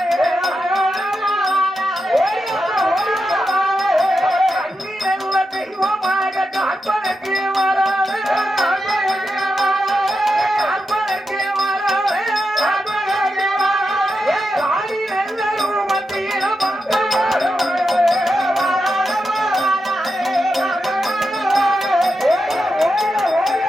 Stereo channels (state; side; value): normal; both; correlation 0.88